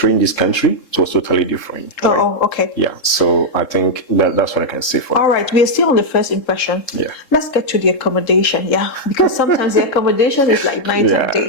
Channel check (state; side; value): late; right; 3.7 ms